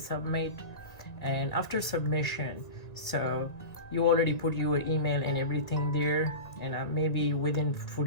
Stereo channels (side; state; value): right; late; 1.9 ms